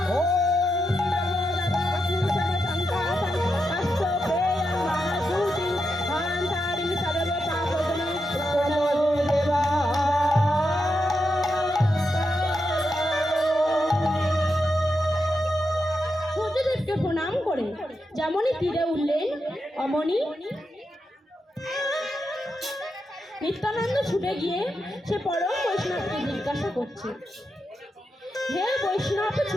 প্রণাম করে যেমনই তীরে উঠলেন অমনি নিত্যানন্দ ছুটে গিয়ে সে পরম বৈষ্ণবকে জিজ্ঞাসা করছে, হে বৈষ্ণব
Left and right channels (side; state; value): both; normal; correlation 0.86